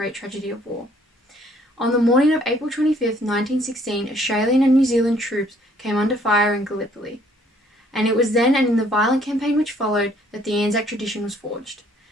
tragedy of war. On the morning of April 25th, 1916, Australian and New Zealand troops came under fire in Gallipoli. And it was then and in the violent campaign which followed that the Anzac tradition was forged.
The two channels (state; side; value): normal; both; correlation 0.62